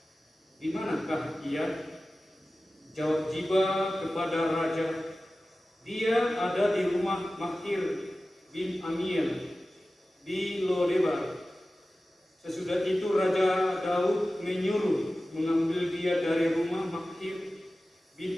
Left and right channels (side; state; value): both; normal; correlation 0.96